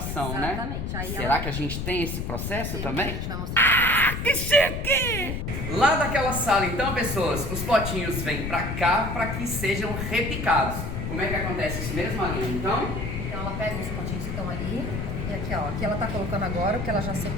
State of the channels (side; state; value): left; noise; rumble, 4 dB below the sound